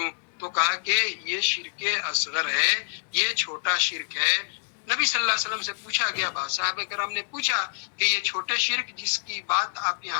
تو کہا کہ یہ شرک اصغر ہے, یہ چھوٹا شرک ہے. نبی صلی اللہ علیہ وسلم سے پوچھا گیا, صحابہ کرام نے پوچھا کہ یہ چھوٹے شرک جس کی بات آپ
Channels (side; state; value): right; silent; digital silence